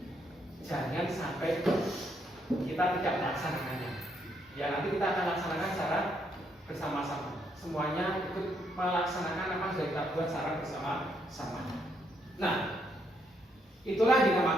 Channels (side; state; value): both; normal; correlation 0.74